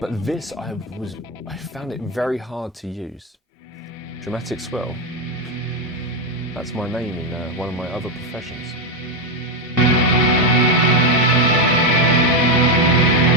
this, I found it very hard to use. Dramatic swell, that's my name in one of my other professions.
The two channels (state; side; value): normal; both; correlation 0.06